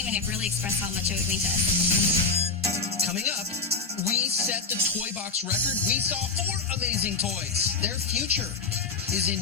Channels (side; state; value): right; quieter; 4.4 dB